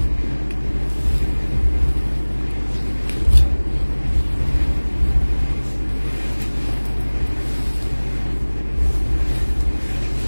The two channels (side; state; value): both; inverted; correlation -1.00